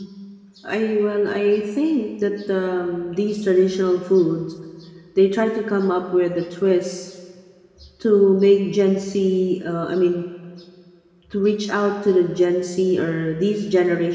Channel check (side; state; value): both; identical; correlation 1.00